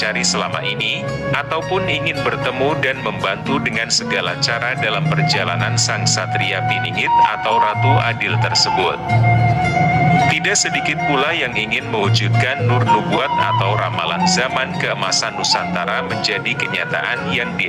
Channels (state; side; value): identical; both; correlation 1.00